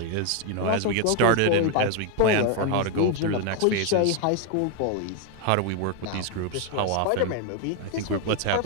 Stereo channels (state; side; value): different; both; correlation 0.01